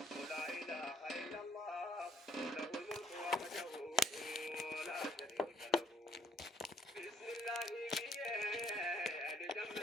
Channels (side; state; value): both; normal; correlation 0.65